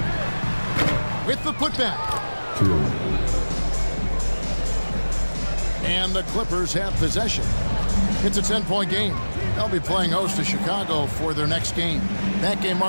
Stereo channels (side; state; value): both; inverted; correlation -1.00